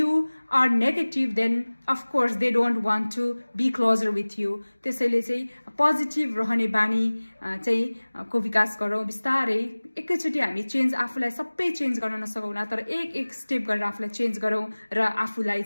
are negative, then of course they don't want to be closer with you। त्यसैले चाहिँ positive रहने बानी चाहिँ को विकास गरौँ बिस्तारै। एकैचोटि हामी चेन्ज आफूलाई सबै चेन्ज गर्न नसकौँला, तर एक स्टेप गरेर आफूलाई चेन्ज गरौँ र आफूलाई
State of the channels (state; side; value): inverted; both; correlation -1.00